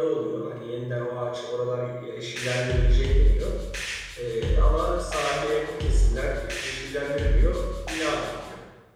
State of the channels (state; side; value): identical; both; correlation 1.00